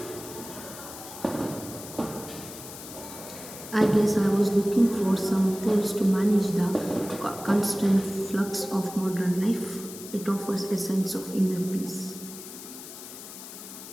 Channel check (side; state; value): left; noise; hiss, 13 dB below the sound